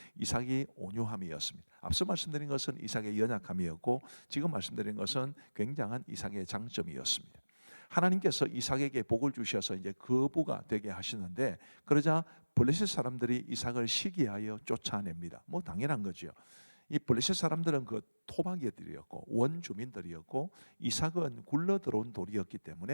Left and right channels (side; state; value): both; inverted; correlation -1.00